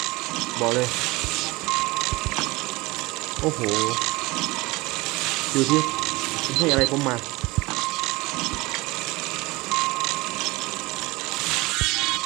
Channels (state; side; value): quieter; left; 22.4 dB